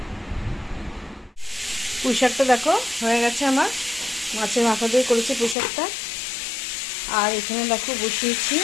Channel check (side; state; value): right; drops out; at 5.6 s